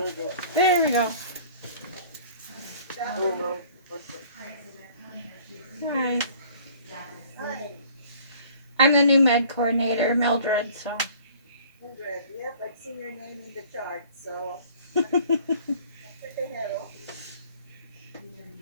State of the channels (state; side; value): inverted; both; correlation -0.51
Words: you go. There we go. Oh Saturday. no, perfect. Hi. Hi, I'm the new med coordinator, Mildred, so. Mildred. Yep, I've seen your name in the chart, so say hello.